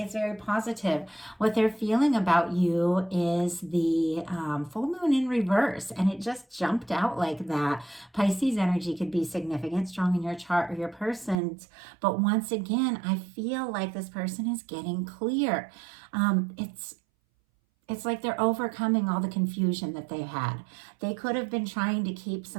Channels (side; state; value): left; drops out; at 11.4 s